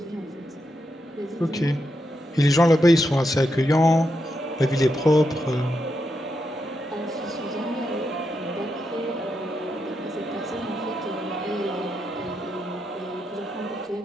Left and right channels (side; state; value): both; normal; correlation 0.84